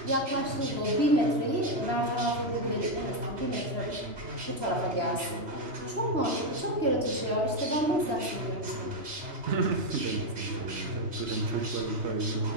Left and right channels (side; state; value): left; late; 3.0 ms